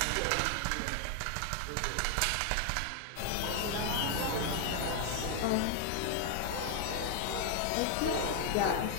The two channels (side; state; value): both; different; correlation 0.00